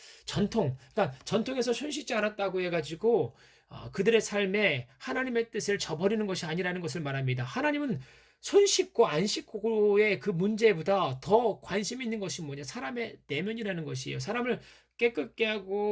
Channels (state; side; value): identical; both; correlation 1.00